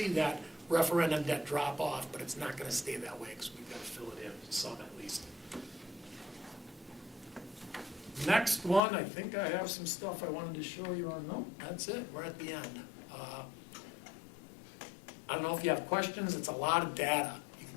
that referendum debt drop off, but it's not gonna stay that way, because we've gotta fill it in, some at least. Next one, I think I have some stuff I wanted to show you on, no, that's it, we're at the end. I don't know if you have questions, it's a lot of data. You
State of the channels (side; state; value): right; drops out; at 8.8 s